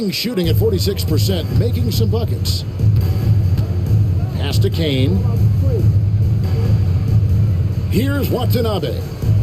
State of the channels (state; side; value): identical; both; correlation 1.00